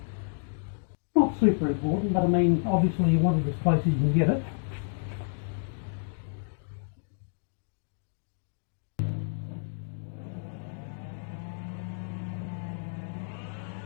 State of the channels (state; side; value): silent; right; 57 dB below the other